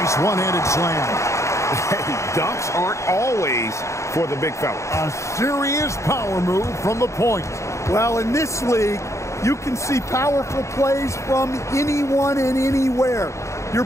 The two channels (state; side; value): late; right; 0.14 ms